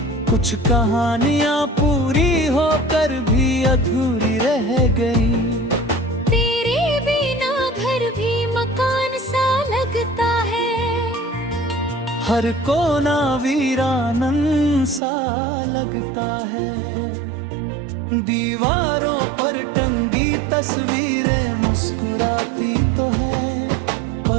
कुछ कहानियां पूरी होकर भी अधूरी रह गई। तेरे बिना घर भी मकान सा लगता है। हर कोना वीरानन सा लगता है। दीवारों पर टंगी तस्वीरें मुस्कुराती तो है,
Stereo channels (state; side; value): drops out; left; at 15.0 s